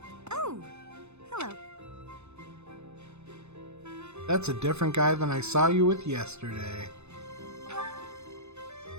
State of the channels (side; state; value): left; late; 0.81 ms